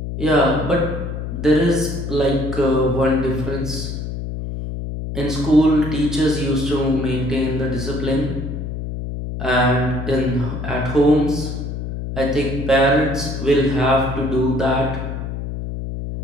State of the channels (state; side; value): noise; left; hum, 5 dB below the sound